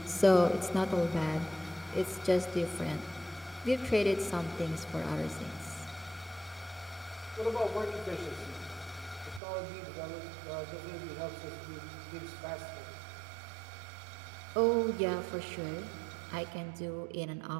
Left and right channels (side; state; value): left; drops out; at 9.4 s